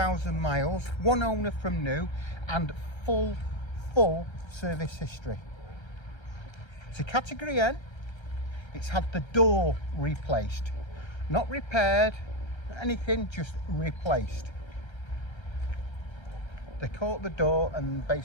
miles, one owner from new, and full service history. It's a category N. It's had the door replaced, not repaired, anything, just replaced. They caught the door and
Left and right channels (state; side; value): late; right; 1.3 ms